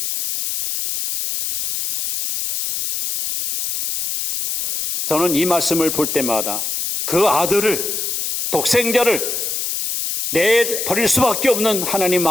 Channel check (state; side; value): noise; left; hiss, 3 dB below the sound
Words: 저는 이 말씀을 볼 때마다 그 아들을, 독생자를 내버릴 수밖에 없는 하나님